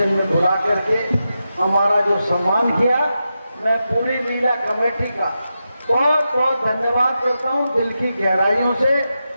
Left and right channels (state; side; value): inverted; both; correlation -0.89